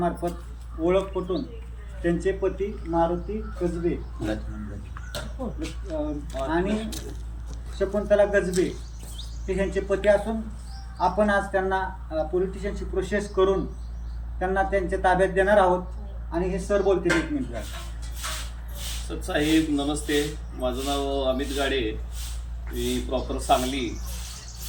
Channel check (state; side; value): identical; both; correlation 1.00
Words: ओळख पटून त्यांचे पती मारुती कसबे आणि शकुंतला गजबे हे ह्यांचे पती असून आपण आज त्यांना पोलीस स्टेशनची प्रोसेस करून त्यांना त्यांच्या ताब्यात देणार आहोत. आणि हे सर बोलतील 1 मिनिट. साहेब नमस्ते, माझं नाव अमित गाडे, मी प्रॉपर सांगली